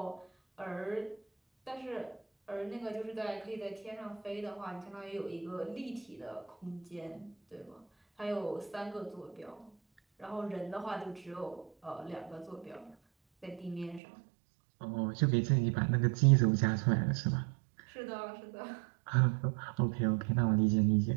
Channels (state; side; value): drops out; left; at 14.0 s